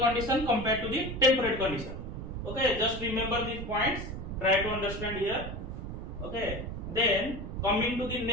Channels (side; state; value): right; noise; rumble, 8 dB below the sound